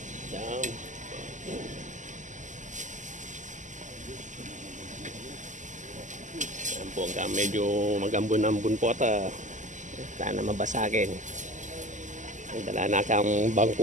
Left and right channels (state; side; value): late; left; 0.36 ms